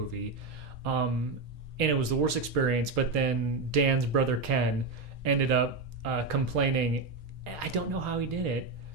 And it was the worst experience, but then Dan's brother Ken ended up complaining. I don't know how he did it,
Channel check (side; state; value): left; quieter; 3.7 dB